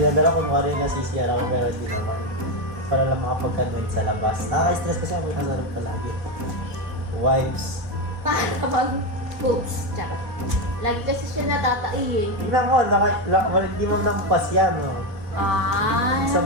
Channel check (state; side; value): late; left; 4.2 ms